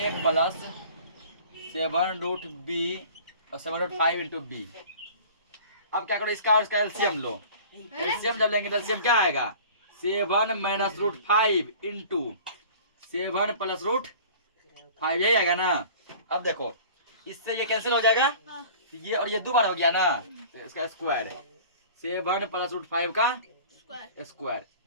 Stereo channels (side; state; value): both; inverted; correlation -0.44